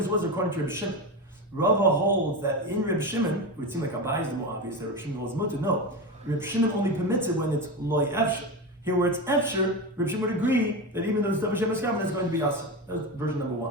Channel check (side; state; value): both; normal; correlation 0.19